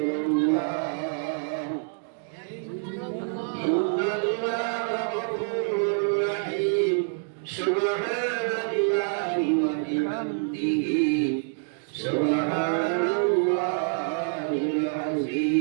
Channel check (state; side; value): silent; left; digital silence